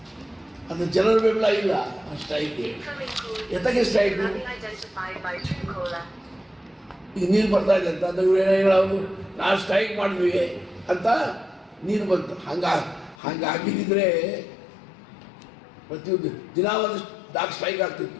ಅದು ಜನರ ಬೆಂಬಲ ಇಲ್ಲ ಆ ಸ್ಟ್ರೈಕ್ಗೆ. ಎತ್ತಕ್ಕೆ ಸ್ಟ್ರೈಕ್? ಈಗ ನೀರು ಬರ್ತಾ ಇದೆ ಅಂತ ಅಂದ್ರೆ ಇವ್ರು ಹೇಳೋದು ನಾವು ಸ್ಟ್ರೈಕ್ ಮಾಡಿದ್ವಿ ಅಂತ ನೀರು ಬಂತು. ಹಂಗಾಗಿದ್ದರೆ ಪ್ರತಿಯೊಂದು ದಿನ ಒಂದು ಸ್ಟ್ರೈಕ್ ಆಗ್ತಿತ್ತು.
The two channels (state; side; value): drops out; right; at 13.2 s